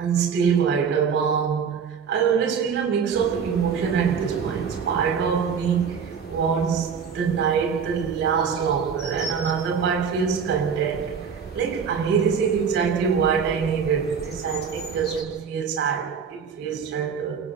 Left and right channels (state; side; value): quieter; left; 6.6 dB